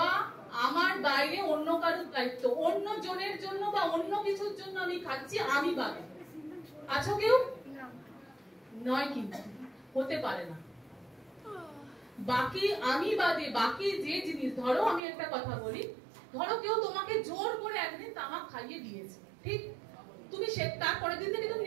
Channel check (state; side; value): drops out; left; at 15.0 s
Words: আমার বাইরে অন্য কারোর দায়িত্ব, অন্য জনের জন্য বা অন্য কিছুর জন্য আমি খাচ্ছি, আমি বাদে আছো কেউ? নয়, কিন্তু হতে পারে না। বাকি আমি বাদে বাকি যে জিনিস, ধরো আমি একটা কথা বলি, ধরো কেউ তোমাকে জোর করে একদিন তামাক খাইয়ে দিয়েছে, ঠিক? তুমি তারপরের দিন থেকে তুমি